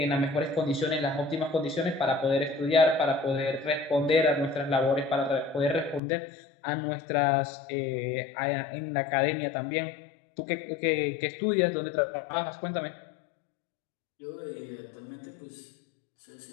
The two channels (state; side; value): drops out; right; at 6.0 s